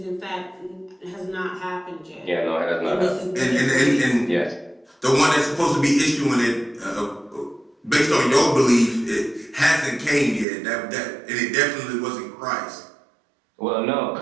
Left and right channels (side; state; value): left; drops out; at 10.5 s